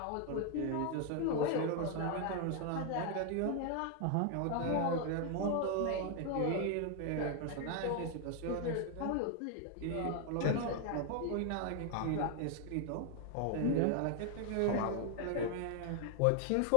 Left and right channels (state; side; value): different; both; correlation 0.00